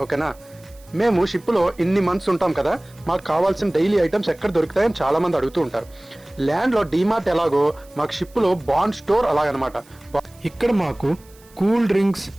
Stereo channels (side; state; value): right; noise; hiss, 27 dB below the sound